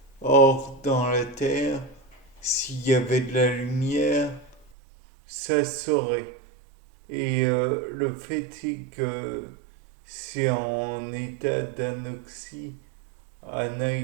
Or, dans la terre, s'il y avait de la lumière, ça saurait. Et le fait est que c'est en état d'anoxie,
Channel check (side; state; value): left; drops out; at 4.7 s